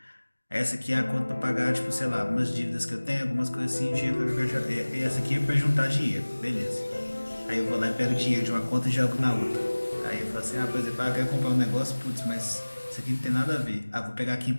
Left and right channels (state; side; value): inverted; both; correlation -1.00